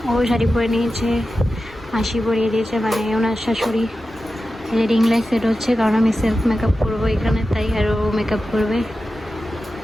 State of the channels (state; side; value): normal; both; correlation 0.93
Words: ও শাড়ি পরে নিয়েছে, মাসি পরিয়ে দিয়েছে, মানে ওনার শাশুড়ি। রিং লাইট সেট হচ্ছে, কারণ আমি সেলফ মেকআপ করবো এখানে, তাই আর ও মেকআপ করবে।